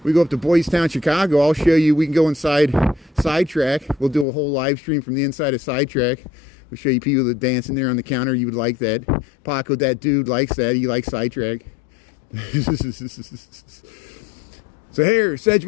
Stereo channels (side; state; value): right; drops out; at 4.2 s